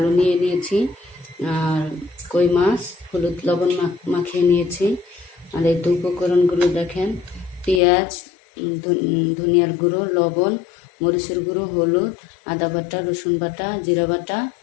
নিয়ে নিয়েছি, আর কই মাছ হলুদ লবণ মাখিয়ে নিয়েছি। আর এই তো উপকরণগুলো দেখেন: পেঁয়াজ, ধনিয়ার গুঁড়ো, লবণ, মরিচের গুঁড়ো, হলুদ, আদা বাটা, রসুন বাটা, জিরা বাটা।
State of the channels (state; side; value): drops out; right; at 7.8 s